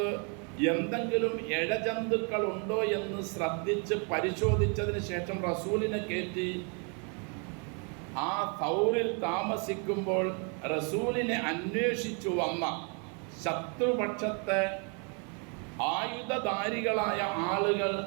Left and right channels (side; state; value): left; quieter; 36.7 dB